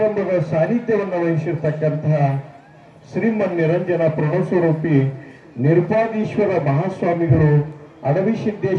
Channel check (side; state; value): both; identical; correlation 1.00